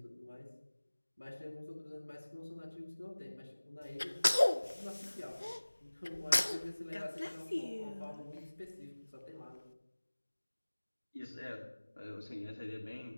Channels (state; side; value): inverted; both; correlation -1.00